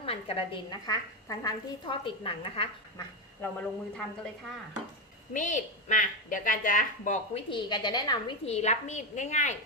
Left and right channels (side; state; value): both; normal; correlation 0.10